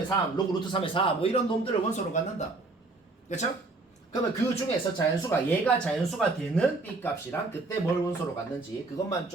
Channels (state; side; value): quieter; left; 3.4 dB